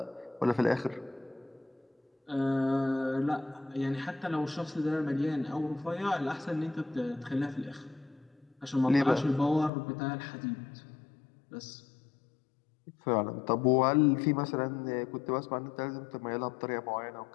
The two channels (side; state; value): right; drops out; at 9.7 s